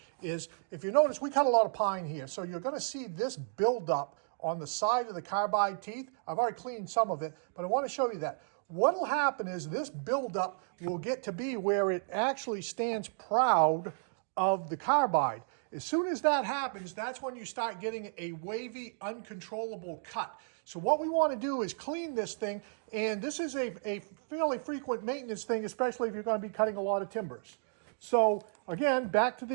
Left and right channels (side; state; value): left; silent; digital silence